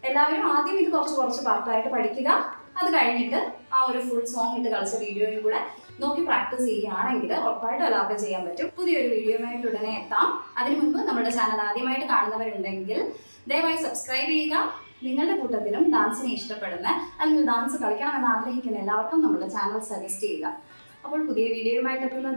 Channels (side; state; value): both; inverted; correlation -1.00